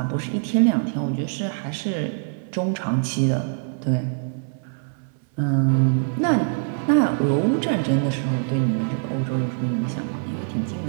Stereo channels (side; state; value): left; silent; digital silence